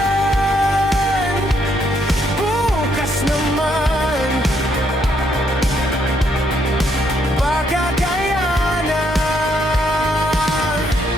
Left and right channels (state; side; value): normal; both; correlation 0.73